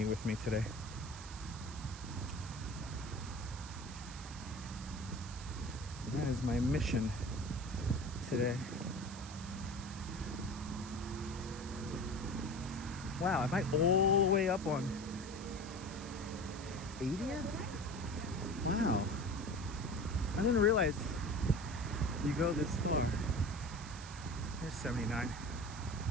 with me today. That is my mission today. Wow, am I all the way up on 80th? Wow. I didn't realize you go this far. Here's 79.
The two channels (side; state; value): right; noise; hiss, 14 dB below the sound